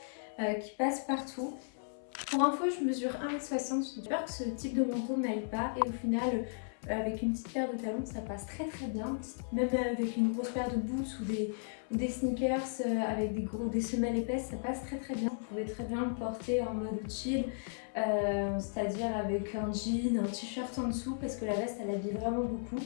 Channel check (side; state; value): right; silent; 54 dB below the other